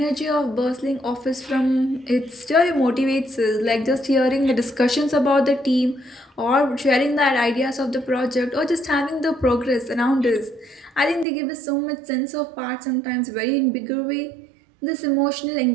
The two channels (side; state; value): left; drops out; at 11.2 s